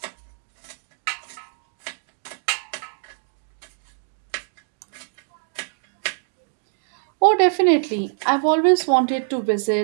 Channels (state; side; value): silent; left; digital silence